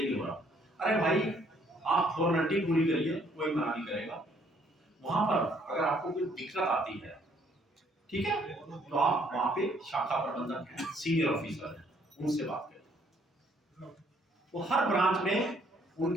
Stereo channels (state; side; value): normal; both; correlation 0.65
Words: नहीं हो रहा। अरे भाई, आप फॉर्मेलिटी पूरी करिए, कोई मना नहीं करेगा। वहां पर अगर आपको कोई दिक्कत आती है, ठीक है, तो आप वहां पे शाखा प्रबंधक हैं, सीनियर ऑफिसर हैं, उनसे बात करें। तो हर ब्रांच में